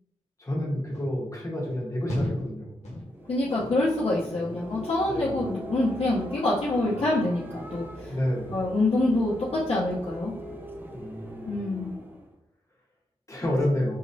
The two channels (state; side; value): normal; both; correlation 0.81